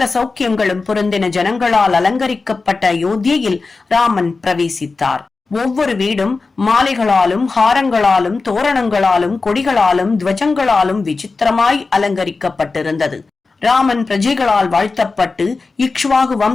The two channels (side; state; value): right; quieter; 4.0 dB